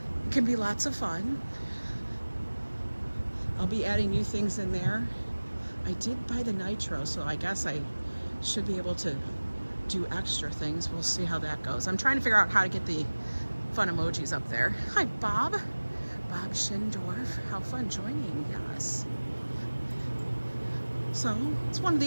It can be lots of fun. I'll be adding new things in there. I did buy the nitro, so I guess I should be able to do extra things. We'll see how that goes. I'm trying to figure out how to get the fun emojis up there. Hi, Bob. Bob Schindorf. How fun joining us. So it's one of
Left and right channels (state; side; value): inverted; both; correlation -1.00